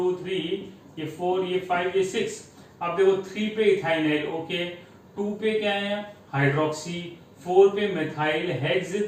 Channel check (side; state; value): both; identical; correlation 1.00